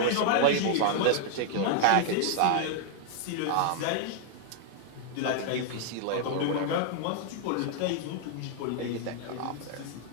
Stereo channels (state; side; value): different; both; correlation 0.00